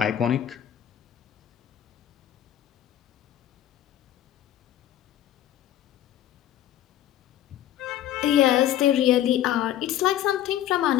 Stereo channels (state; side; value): quieter; right; 12.0 dB